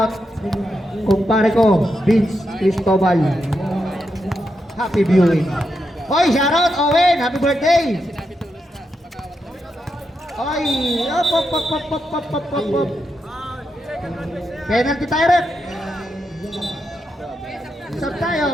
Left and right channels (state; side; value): normal; both; correlation 0.85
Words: kumpare ko, Vince Cristobal. Happy viewing. Hoy, shoutout, Owen, happy birthday! Hoy, op. Penalty tayo, rep. Sub tayo,